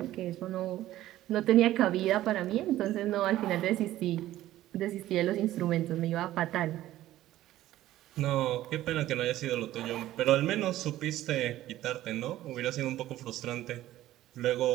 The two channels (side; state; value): left; quieter; 14.5 dB